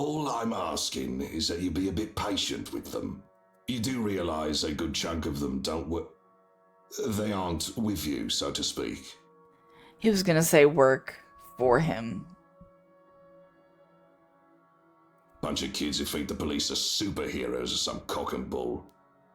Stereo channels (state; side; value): identical; both; correlation 1.00